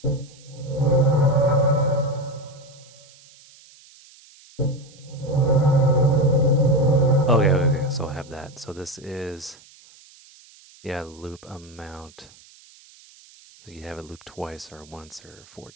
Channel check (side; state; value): right; noise; hiss, 25 dB below the sound